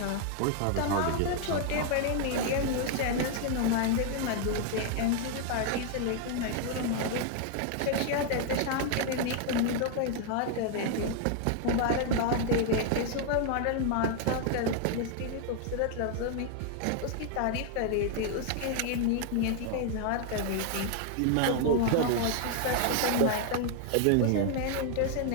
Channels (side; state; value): both; different; correlation 0.00